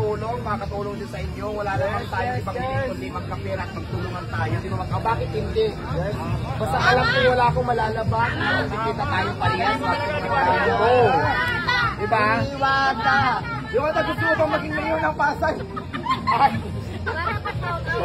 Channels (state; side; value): identical; both; correlation 1.00